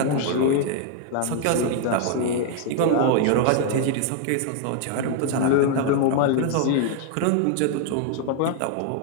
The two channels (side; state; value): both; different; correlation 0.00